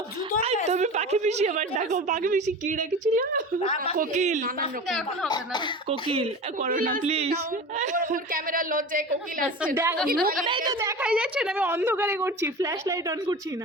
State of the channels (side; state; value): both; normal; correlation 0.33